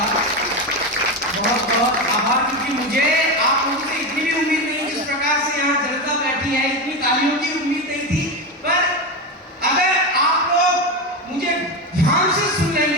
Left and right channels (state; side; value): normal; both; correlation 0.17